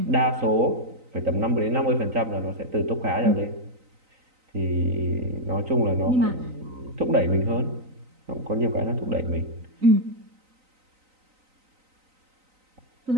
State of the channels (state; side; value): late; left; 3.9 ms